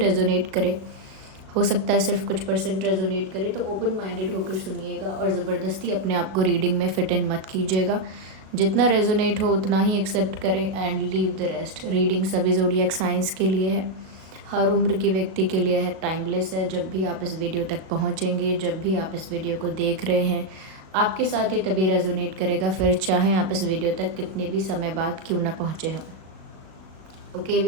करे, हो सकता है सिर्फ कुछ परसेंट रेजोनेट करे। तो ओपन माइंडेड होकर सुनिएगा और ज़बरदस्ती अपने आप को रीडिंग में फिट इन मत कीजिएगा। जितना रेजोनेट हो उतना ही एक्सेप्ट करें and leave the rest. Reading सभी ज़ोडिएक साइंस के लिए है, हर उम्र के व्यक्ति के लिए है, टाइमलेस है। जब भी आप इस वीडियो तक पहुंचेंगे, जब भी आप इस वीडियो को देख रहे हैं, आपके साथ ये तभी रेजोनेट करेगा, फिर चाहे आप इस वीडियो तक कितने भी समय बाद क्यों ना पहुँचे हों। ओके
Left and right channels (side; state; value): left; late; 37 ms